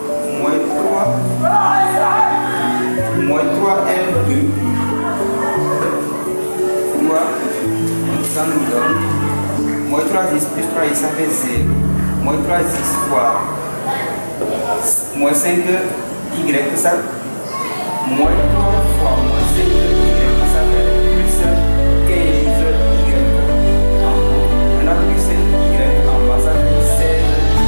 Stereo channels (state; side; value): inverted; both; correlation -1.00